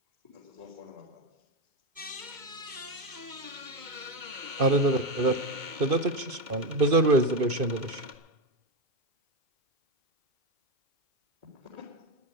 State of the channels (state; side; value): late; left; 2.2 ms